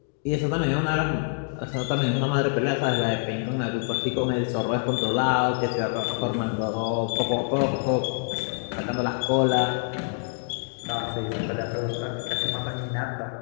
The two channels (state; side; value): silent; right; digital silence